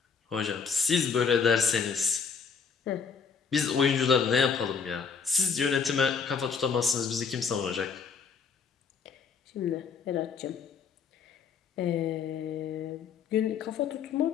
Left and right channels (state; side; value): quieter; right; 6.0 dB